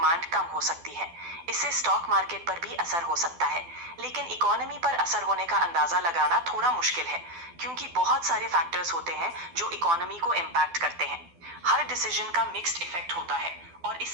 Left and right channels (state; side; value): late; left; 12 ms